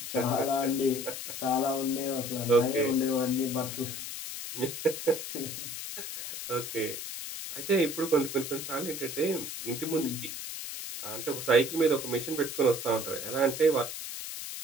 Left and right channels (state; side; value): noise; left; hiss, 7 dB below the sound